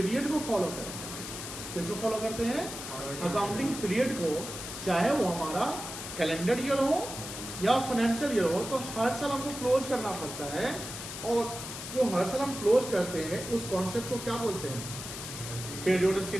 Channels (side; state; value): left; noise; hiss, 8 dB below the sound